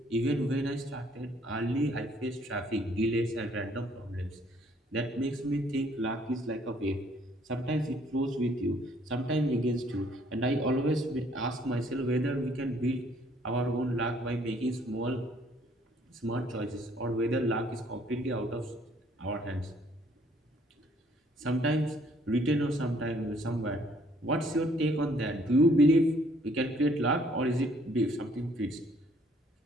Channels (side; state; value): both; normal; correlation 0.63